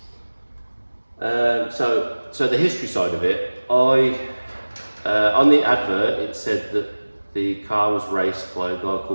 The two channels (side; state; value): both; inverted; correlation -1.00